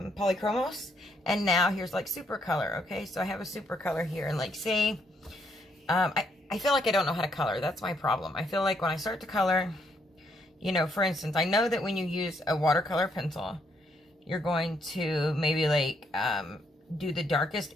and now here's like super color. Okay, so I have a super color here, and like, say, I feel like I don't know how to color. That's my problem. I feel like when I start to color, you know, for instance, I know that when you use a watercolor pencil, you're going to maybe like do the darkest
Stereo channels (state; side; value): normal; both; correlation 0.73